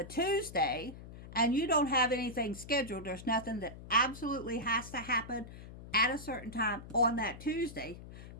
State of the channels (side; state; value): left; noise; hum, 14 dB below the sound